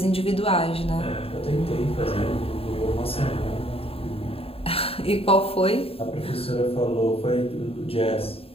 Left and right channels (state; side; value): late; right; 0.28 ms